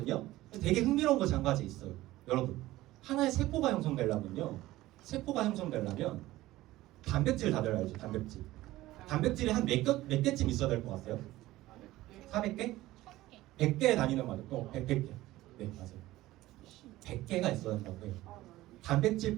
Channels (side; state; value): left; quieter; 16.8 dB